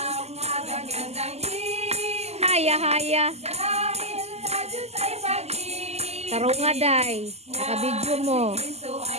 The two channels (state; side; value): late; left; 0.30 ms